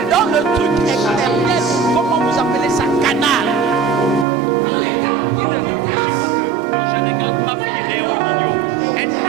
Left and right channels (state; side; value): drops out; left; at 4.2 s